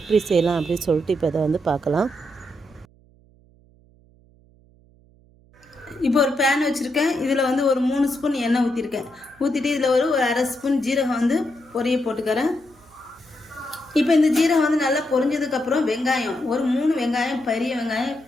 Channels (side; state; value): right; noise; hum, 29 dB below the sound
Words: செய்யலாம் அப்படின்னு சொல்லிட்டு இப்போ இதை வந்து பார்க்கலாம். இப்போ ஒரு பேன் வச்சுருக்கேன். இதில் வந்து ஒரு 3 ஸ்பூன் எண்ணெய் ஊற்றிருக்கேன். ஊற்றிட்டு இதில் ஒரு அரை ஸ்பூன் ஜீரகம் வந்து பொரிய போட்டுக்கிறேன். இப்போ இந்த ஜீரகம் வந்து நல்லா பொரிஞ்சதுக்கப்புறம் வெங்காயம் ஒரு 3 வெங்காயம், பெரிய வெங்காயம்